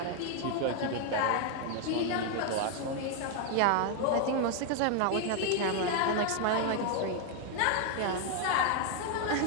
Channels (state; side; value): different; both; correlation 0.01